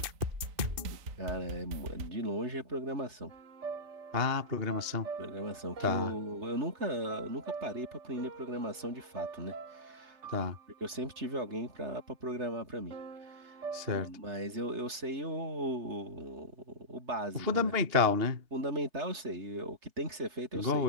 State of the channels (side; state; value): left; late; 3.3 ms